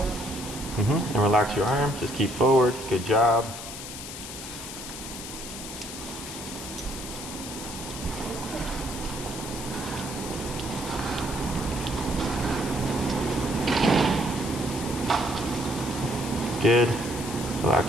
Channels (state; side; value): noise; left; hiss, 9 dB below the sound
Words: And relax your arm, just keep forward, good job. Good.